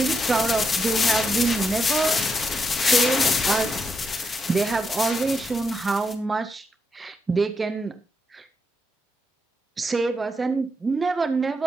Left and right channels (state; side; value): normal; both; correlation 0.82